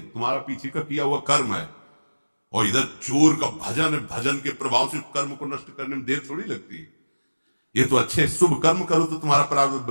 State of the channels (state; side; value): inverted; both; correlation -1.00